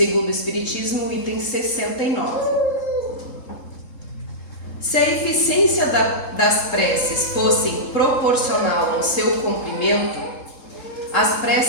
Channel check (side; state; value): right; late; 3.7 ms